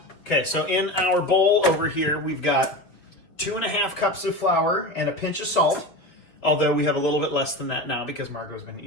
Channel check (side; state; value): right; late; 5.4 ms